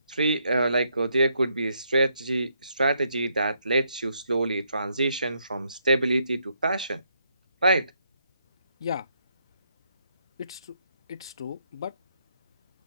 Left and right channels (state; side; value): inverted; both; correlation -0.76